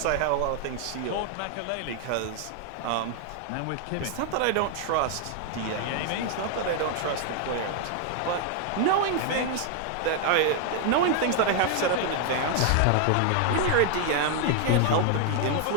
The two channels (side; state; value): both; different; correlation 0.00